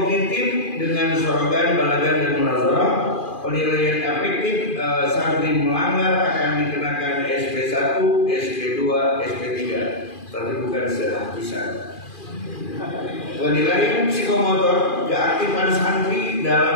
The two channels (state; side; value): late; right; 2.4 ms